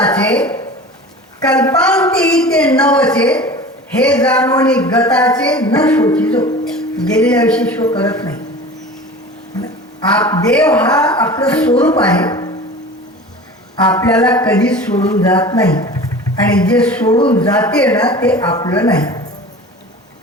कल्पांती ते नवचे हे जाणवणी गताचे न शोचितो. गेलेल्या विषयी शो करत नाही. देव हा आपलं स्वरूप आहे, आपल्याला कधीच सोडून जात नाही. आणि जे सोडून जाते ना ते आपलं नाही.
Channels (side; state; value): both; normal; correlation 0.37